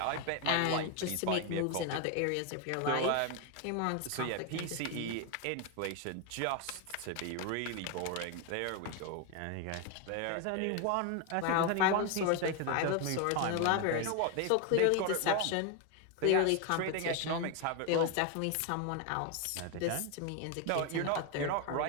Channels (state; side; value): different; both; correlation 0.01